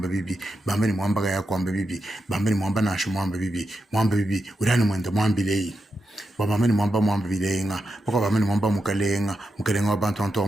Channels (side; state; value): both; normal; correlation 0.87